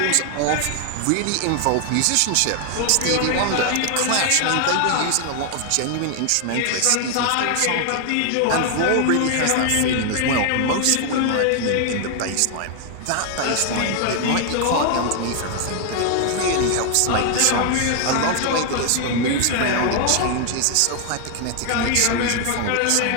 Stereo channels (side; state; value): both; different; correlation 0.00